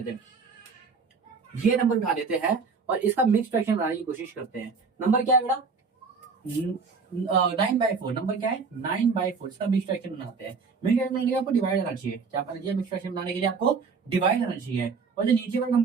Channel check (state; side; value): quieter; left; 5.0 dB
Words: हैं, ये नंबर उठा लेते हैं और इसका मिक्स फ्रैक्शन बनाने की कोशिश करते हैं। नंबर क्या है बेटा, 9/4। नंबर क्या है 9/4, इसका मिक्स फ्रैक्शन बनाते हैं। मिक्स फ्रैक्शन बनाने के लिए आपको डिवाइड आना चाहिए, क्या करना चाहिए, मिक्स फ्रैक्शन बनाने के लिए आपको डिवाइड आना चाहिए। और जो नीचे वाला